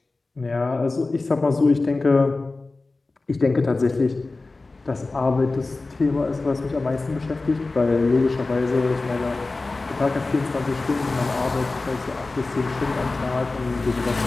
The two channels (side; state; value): right; quieter; 3.4 dB